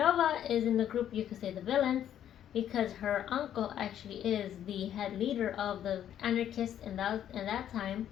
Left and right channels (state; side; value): quieter; right; 10.5 dB